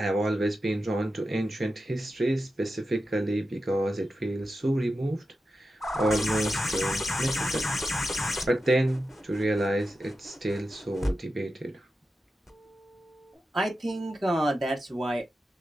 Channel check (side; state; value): both; normal; correlation 0.91